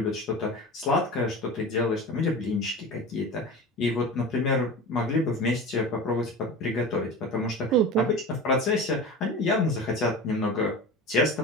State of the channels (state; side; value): normal; both; correlation 0.32